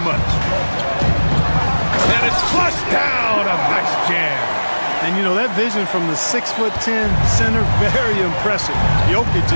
much. And it's flushed down. A nice jam. And, you know, that vision from the 6'10" center, very impressive. Jokic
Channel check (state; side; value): inverted; both; correlation -1.00